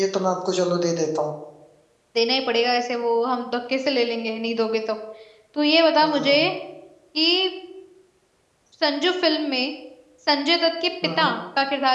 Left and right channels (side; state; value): both; identical; correlation 1.00